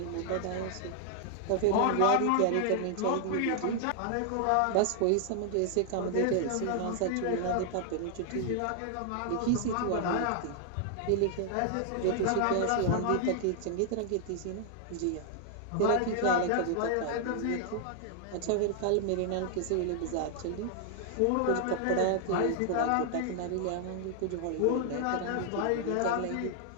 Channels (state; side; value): different; both; correlation 0.00